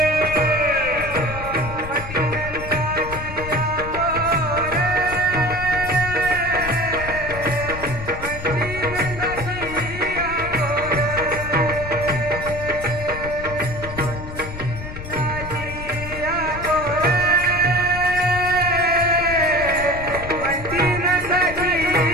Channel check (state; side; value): noise; left; rumble, 10 dB below the sound